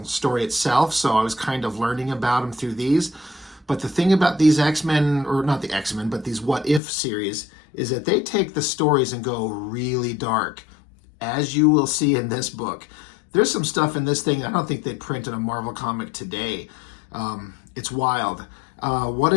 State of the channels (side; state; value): right; drops out; at 6.8 s